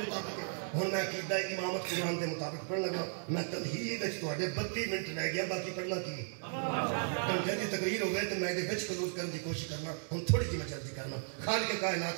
ہوں میں عقیدہ امامت قرآن دے مطابق پڑھن لگا. میں تمہید تھوڑے 32 منٹ رہ گیا، باقی پڑھنا کی گھنٹے کی تقریر ہو گئے تو میں خلوص کرنے کی کوشش کرنا. ہوں تھوڑی جی میں جلدی کرنا. خالق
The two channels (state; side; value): silent; left; 54 dB below the other